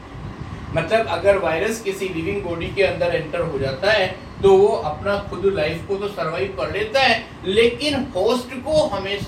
मतलब अगर वायरस किसी लिविंग बॉडी के अंदर एंटर हो जाता है तो वो अपना खुद लाइफ को तो सरवाइव कर लेता है, लेकिन होस्ट को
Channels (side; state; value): both; identical; correlation 1.00